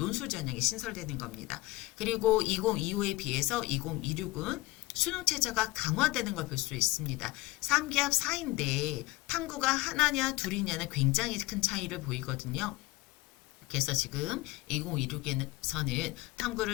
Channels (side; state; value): right; quieter; 20.4 dB